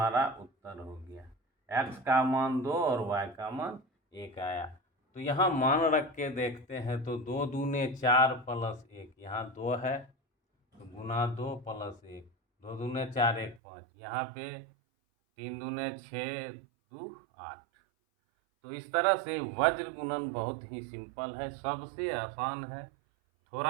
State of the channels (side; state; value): left; drops out; at 13.6 s